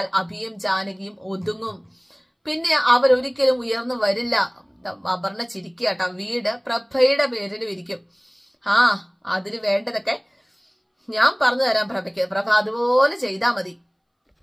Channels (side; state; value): both; identical; correlation 1.00